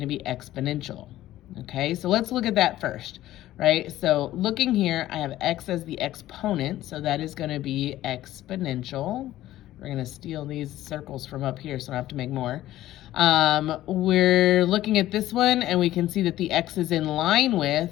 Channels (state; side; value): quieter; right; 14.4 dB